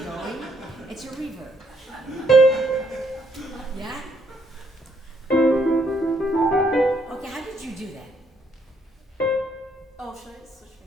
It's a reverb. Yeah? Okay, how did you do that? Oh, should I switch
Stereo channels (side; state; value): both; normal; correlation 0.70